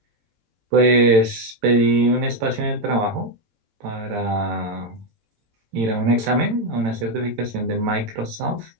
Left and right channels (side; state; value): left; late; 18 ms